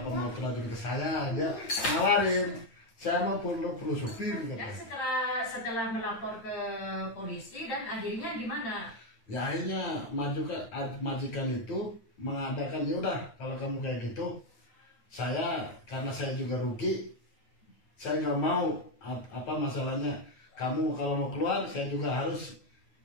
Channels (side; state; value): right; late; 8.8 ms